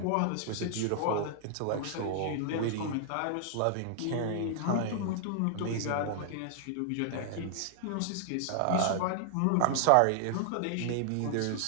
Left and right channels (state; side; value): different; both; correlation 0.00